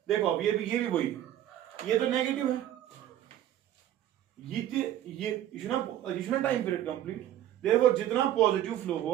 देखो अब ये भी वही, ये तो नेगेटिव है, ये टाइम पीरियड कंप्लीट, देयरफॉर जितना पॉजिटिव फ्लो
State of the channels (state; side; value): quieter; left; 12.0 dB